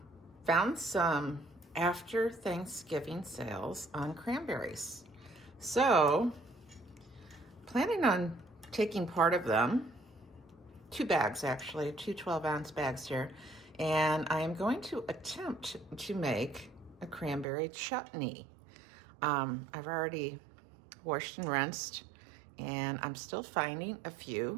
some after Thanksgiving sales on cranberries. So, planning on taking part of them, 2 bags actually, two 12-ounce bags here, and I am going to attempt to make a cranberry chutney. I've already washed and rinsed, and I'm still finding a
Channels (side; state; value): left; drops out; at 17.4 s